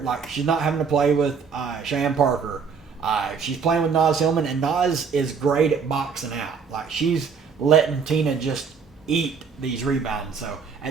Like, she's not having to play with Cheyenne Parker. She's playing with Naz Hillman, and Naz is great at boxing out. Like, she's letting Tina just eat these rebounds. So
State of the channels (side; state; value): left; quieter; 5.8 dB